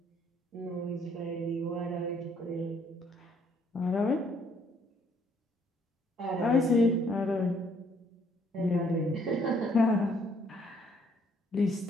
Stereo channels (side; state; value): both; normal; correlation 0.66